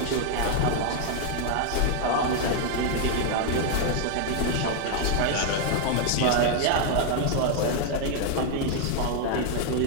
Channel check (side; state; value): both; different; correlation 0.00